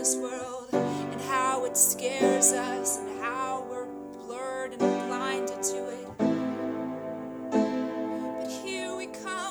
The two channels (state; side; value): identical; both; correlation 1.00